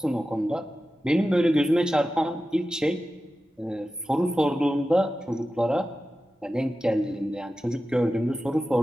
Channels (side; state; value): both; normal; correlation 0.93